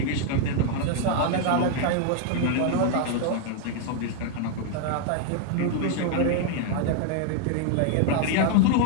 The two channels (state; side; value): different; both; correlation 0.00